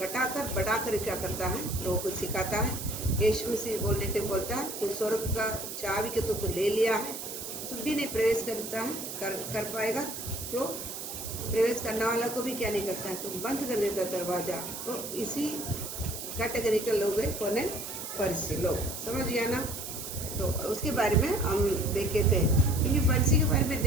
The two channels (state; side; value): noise; right; hiss, 7 dB below the sound